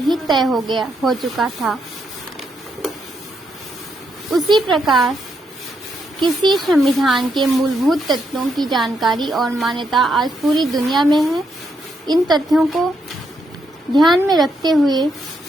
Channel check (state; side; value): normal; both; correlation 0.79